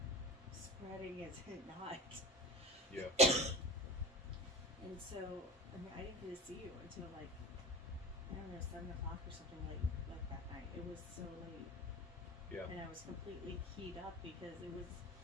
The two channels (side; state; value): both; normal; correlation 0.31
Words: spreading? Is it not? Yeah. And so, I mean, I didn't get to see you until like, I don't know, 7 o'clock or something like that night. It was so late. Yeah. And I was completely keyed up because it was,